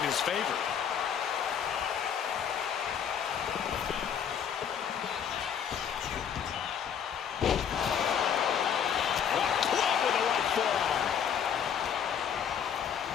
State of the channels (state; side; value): quieter; right; 8.1 dB